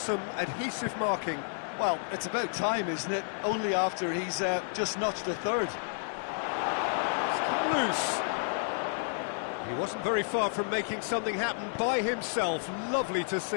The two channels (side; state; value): right; silent; 57 dB below the other